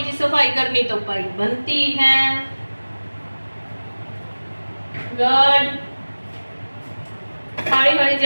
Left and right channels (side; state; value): both; inverted; correlation -1.00